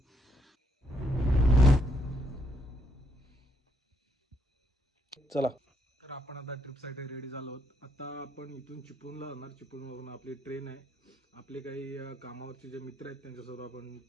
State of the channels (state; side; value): normal; both; correlation 0.72